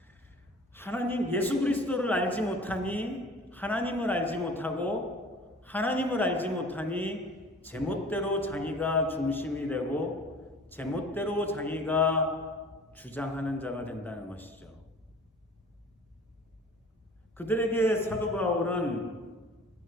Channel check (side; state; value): both; normal; correlation 0.45